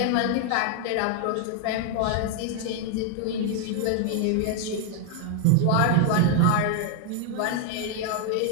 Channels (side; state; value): both; different; correlation 0.00